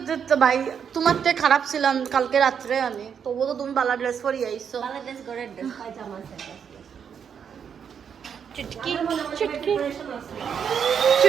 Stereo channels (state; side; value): quieter; left; 7.5 dB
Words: ভাই তোমার থেকে খারাপ ছিলাম কালকে রাত্রে আমি তবুও তো তুমি বালা ড্রেস পরি আইছো বাংলাদেশ গড়ের ড্রেস পায়জামা আছে চুটকি চুটকি